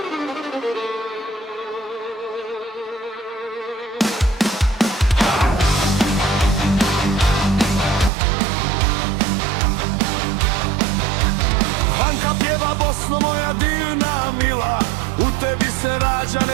Anka pjeva Bosno moja divna mila, u tebi se rađa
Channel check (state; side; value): drops out; left; at 8.1 s